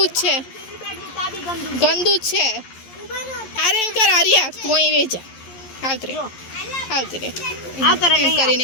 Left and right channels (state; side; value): late; right; 11 ms